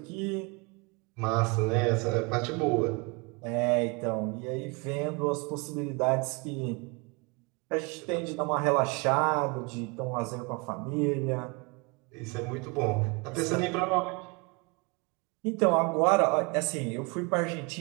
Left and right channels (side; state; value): left; quieter; 29.6 dB